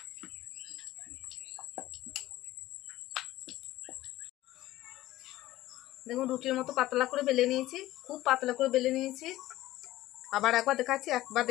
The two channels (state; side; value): quieter; right; 16.0 dB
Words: দেখুন রুটির মতো পাতলা করে বেলে নিয়েছি, খুব পাতলা করে বেলে নিয়েছি। আবার একবার দেখাচ্ছি, একবার